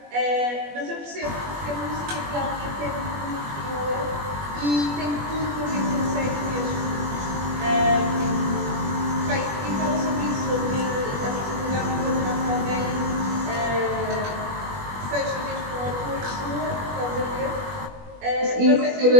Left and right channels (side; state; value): left; late; 21 ms